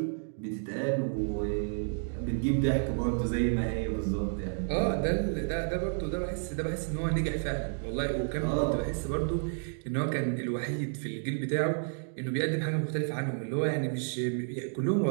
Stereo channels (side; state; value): left; silent; digital silence